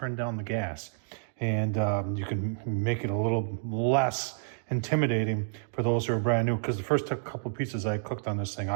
down the gas. And you can make it a little less intimidating for those who are brand new. Because the first couple of pizzas I cooked on this thing,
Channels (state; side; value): silent; left; digital silence